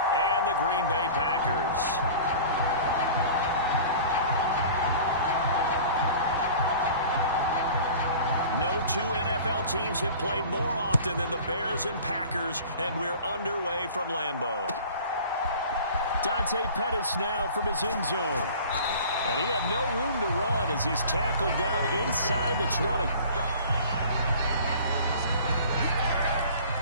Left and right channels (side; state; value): both; inverted; correlation -0.43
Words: and the Green Bay Packers. No two NFL teams have played more often than the Bears and Packers, and we're underway from Lambeau. Dante Pettis now from his end zone. And he had no room to run as he's tackled down inside the 20.